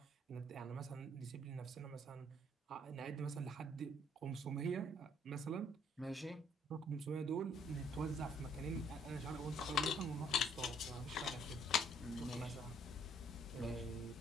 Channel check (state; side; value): normal; both; correlation 0.64